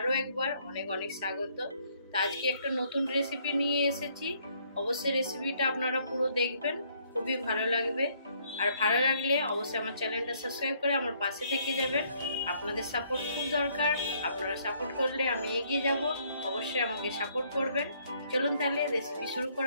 একবার অনেক অনেক স্বাগত। তো আজকে একটা নতুন রেসিপি নিয়ে এসেছি। অবশ্যই রেসিপিটা আপনারা পুরো দেখবেন, খুবই ভালো লাগবে। আর ভালো লাগলে অবশ্যই আমার চ্যানেলটা সাবস্ক্রাইব করে আমার পাশে থেকে যাবেন। আপনাদের সাপোর্ট খুব দরকার, আপনারা সাপোর্ট করলে আমি এগিয়ে যাব। অবশ্যই আমাকে সাপোর্ট করবেন। চলুন তাহলে রেসিপি শুরু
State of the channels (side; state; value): both; inverted; correlation -0.66